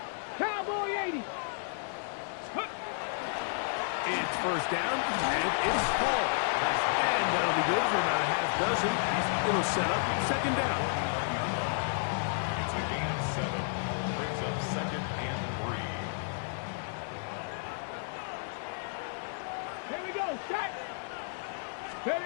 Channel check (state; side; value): silent; right; 56 dB below the other